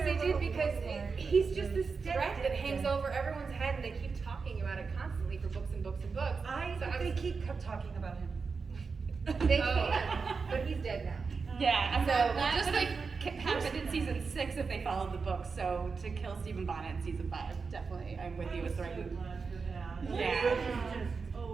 they did because he's just this threat that hangs over everyone's head and they keep talking about it constantly for books and books and books. I So think I they was- keep talking about him. They Oh. can, but he's dead now. Yeah, and So, that just would like- have happened in season 6 if they followed the book. So to kill Stephen Bonnet in season 5, definitely, I'm with you. It's the right move. Yeah.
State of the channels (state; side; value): quieter; left; 4.9 dB